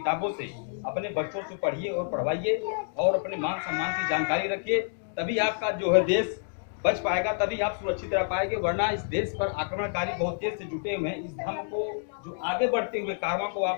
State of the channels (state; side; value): silent; right; digital silence